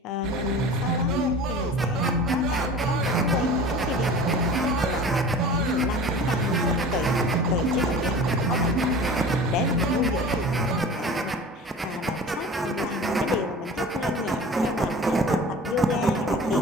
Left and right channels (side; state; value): both; normal; correlation 0.40